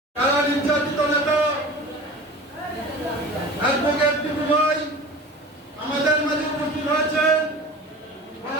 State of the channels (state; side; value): normal; both; correlation 0.37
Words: কারা নির্যাতিত নেতা অ্যাডভোকেট টিপু ভাই আমাদের মাঝে উপস্থিত হয়েছেন।